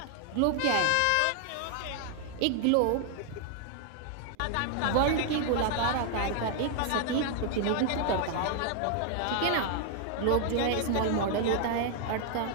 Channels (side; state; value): both; different; correlation 0.00